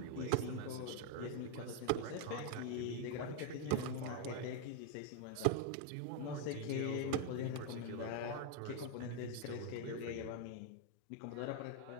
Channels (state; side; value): different; both; correlation 0.01